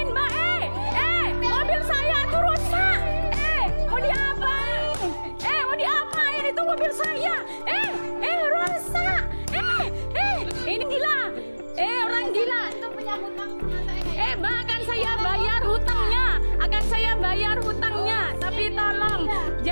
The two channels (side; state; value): both; inverted; correlation -1.00